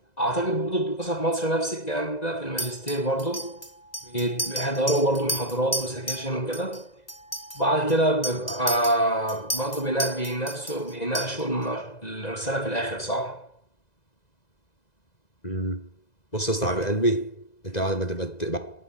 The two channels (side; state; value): right; late; 2.0 ms